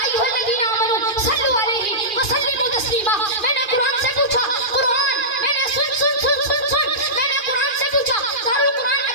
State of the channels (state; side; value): late; right; 2.4 ms